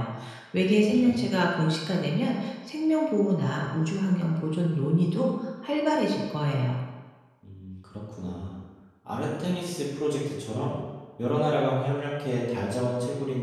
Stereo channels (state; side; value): identical; both; correlation 1.00